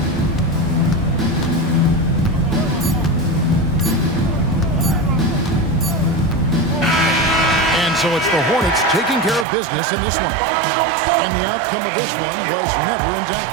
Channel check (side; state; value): left; drops out; at 9.5 s